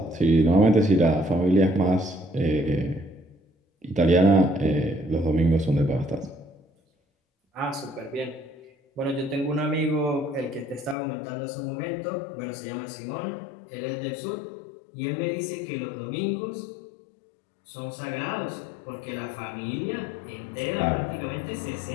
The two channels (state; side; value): drops out; right; at 11.0 s